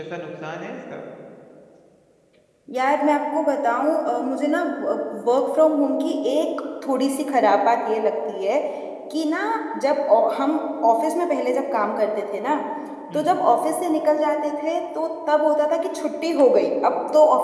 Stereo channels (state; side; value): identical; both; correlation 1.00